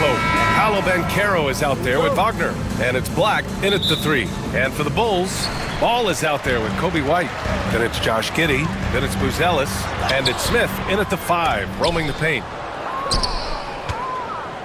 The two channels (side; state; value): both; identical; correlation 1.00